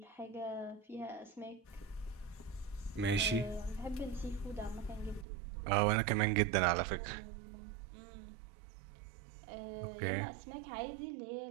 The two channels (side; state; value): left; drops out; at 5.2 s